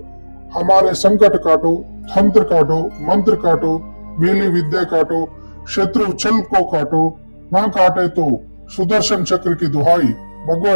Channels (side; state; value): both; inverted; correlation -1.00